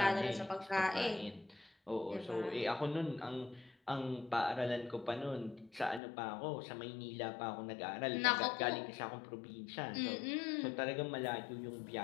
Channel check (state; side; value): drops out; right; at 6.0 s